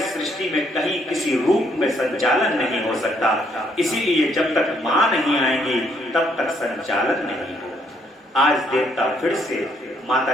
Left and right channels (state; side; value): normal; both; correlation 0.70